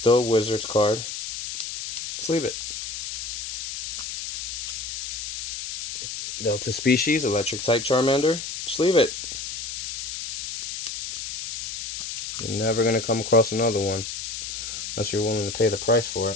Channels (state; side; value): noise; left; hiss, 6 dB below the sound